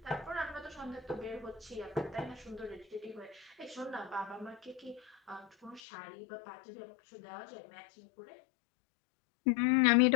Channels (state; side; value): drops out; right; at 5.8 s